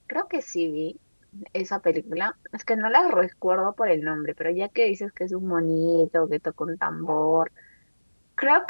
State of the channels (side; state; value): both; inverted; correlation -1.00